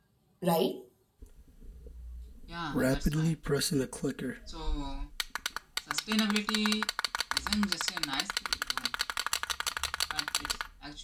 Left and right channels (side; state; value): both; identical; correlation 1.00